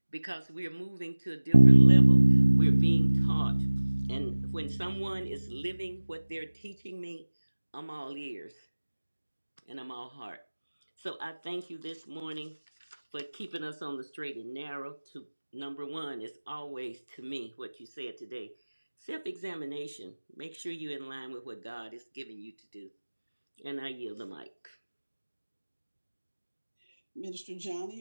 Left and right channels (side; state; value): both; inverted; correlation -1.00